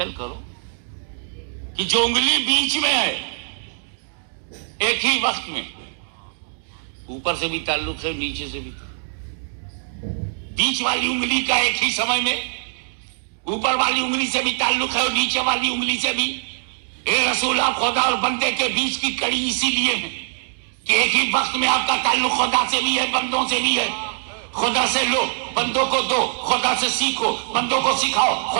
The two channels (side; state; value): left; silent; digital silence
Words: کرو کہ جو انگلی بیچ میں ہے ایک ہی وقت میں، اوپر سے بھی تعلق ہے نیچے سے بھی، بیچ والی انگلی کا ایک ہی سمے میں اوپر والی انگلی سے بھی تعلق ہے اور نیچے والی انگلی سے بھی۔ اے رسول، آپ خدا اور بندے کے بیچ کی کڑی اسی لیے ہے کہ ایک ہی وقت میں آپ کا تعلق خدا سے بھی ہے، بندوں سے بھی ہے۔ خدا سے لو، بندوں کو دو، خدا سے سیکھو، بندوں کو سکھاؤ،